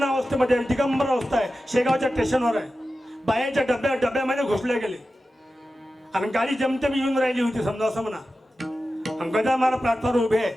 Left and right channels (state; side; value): normal; both; correlation 0.93